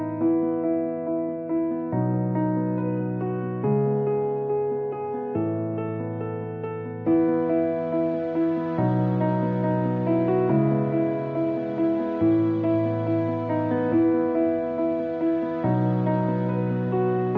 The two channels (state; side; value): identical; both; correlation 1.00